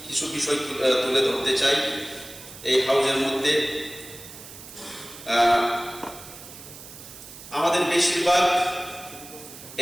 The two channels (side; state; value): right; noise; hiss, 16 dB below the sound